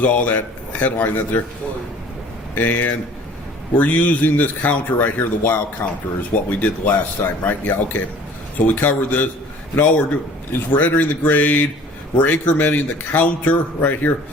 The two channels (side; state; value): both; normal; correlation 0.49